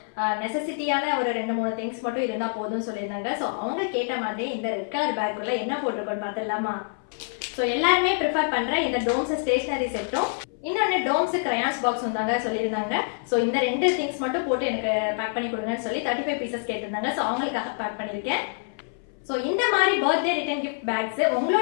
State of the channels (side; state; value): right; silent; 60 dB below the other